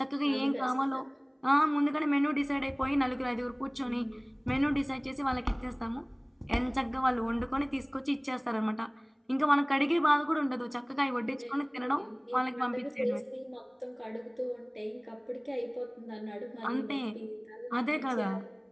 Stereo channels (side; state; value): both; identical; correlation 1.00